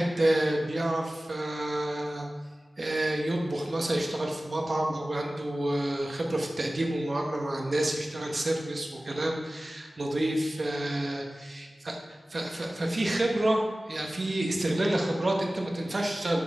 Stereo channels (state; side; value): normal; both; correlation 0.96